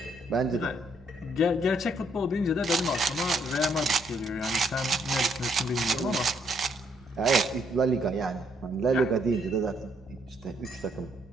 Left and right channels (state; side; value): noise; right; rumble, 28 dB below the sound